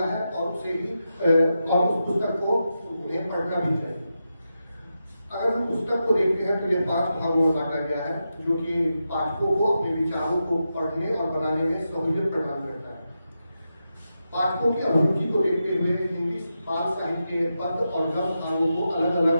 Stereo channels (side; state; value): both; inverted; correlation -0.88